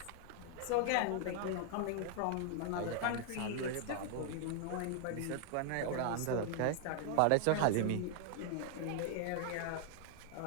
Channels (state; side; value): different; both; correlation 0.00